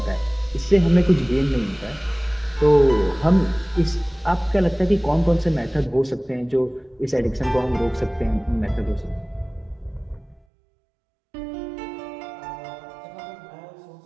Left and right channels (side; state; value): left; drops out; at 10.5 s